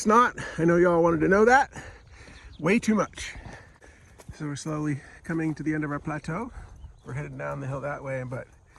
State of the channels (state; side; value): identical; both; correlation 1.00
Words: I know y'all wanted to know that. Way too much. So we're slowly coming to the end of our plateau. We're headed down the hill that way, but